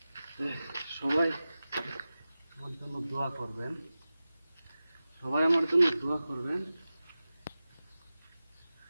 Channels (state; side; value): inverted; both; correlation -0.95